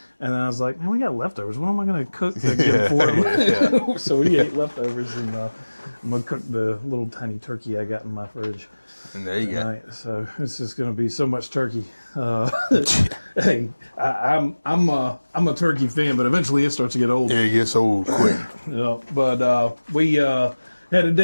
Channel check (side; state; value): both; inverted; correlation -1.00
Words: And then I was like, man, we got leftovers. What am I going to cook to get for them? So we ate leftovers, and I'm going to cook the little tiny turkey I got in my fridge And there you tonight. So it's just going to be so much turkey. Hey, I'm a turkey fan, but eventually it starts to get old. go. Yeah, it gets old quick. Yeah, but we had a